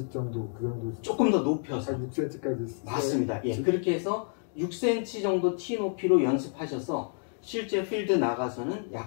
정도 그 정도 조금 더 높여서 한 6cm까지 맞습니다. 그렇게 해서 6cm 정도 티 높이로 연습하셔서 실제 필드 나가서는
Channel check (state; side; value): silent; right; 56 dB below the other